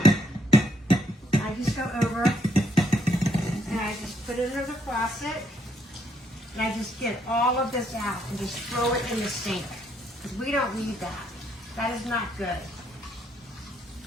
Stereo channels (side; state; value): both; normal; correlation 0.71